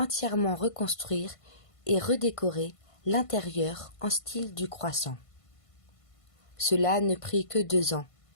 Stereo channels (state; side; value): late; right; 1.5 ms